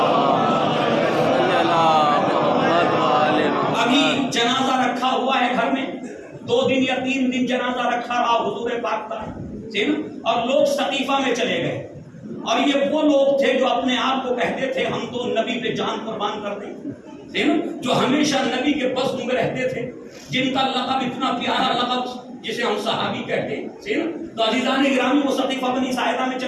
ابھی جنازہ رکھا ہوا ہے گھر میں, 2 دن یا 3 دن جنازہ رکھا رہا حضور پاک کا, اور لوگ ثقیفہ میں چلے گئے. اور یہ وہ لوگ تھے جو اپنے آپ کو کہتے تھے ہم تو نبی پہ جان قربان کر دیں, جو ہمیشہ نبی کے بزم میں رہتے تھے, جن کا لقب اتنا پیارا لقب جسے ہم صحابی کہتے ہیں. تو عزیزان گرامی وہ ثقیفہ بنی ساعدہ میں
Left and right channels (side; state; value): both; identical; correlation 1.00